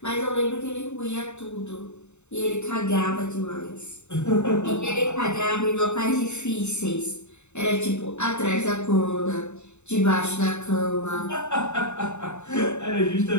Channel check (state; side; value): late; right; 0.82 ms